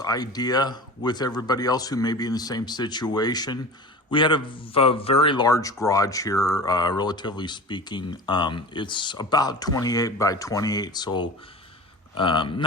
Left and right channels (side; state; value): both; normal; correlation 0.35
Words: with everybody else who may be in the same situation. We had a very large garage here, relatively speaking. It's about 28 by 28, so